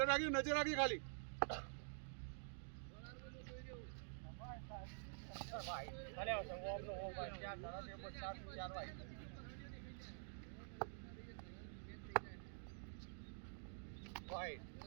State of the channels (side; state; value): left; silent; digital silence